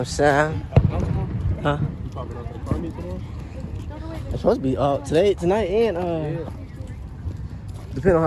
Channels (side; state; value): both; identical; correlation 1.00